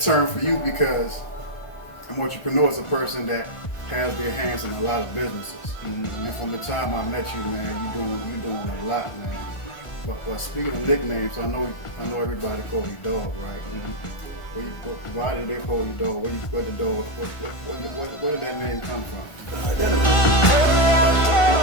term for you because an entrepreneur is a person that has their hands in a lot of businesses. Mm-hmm. And from the time I met you, man, you doing a lot, man. But speaking of nicknames, I know everybody call you Dog, right? Mm-hmm. Why did they call you Dog? Where the dog? Where did that name come from?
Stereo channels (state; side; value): late; right; 1.4 ms